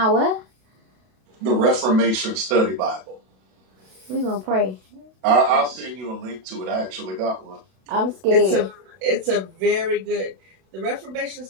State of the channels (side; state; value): left; late; 32 ms